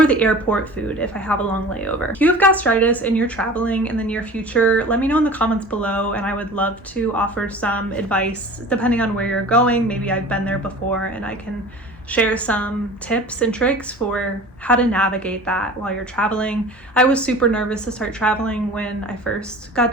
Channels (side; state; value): both; normal; correlation 0.40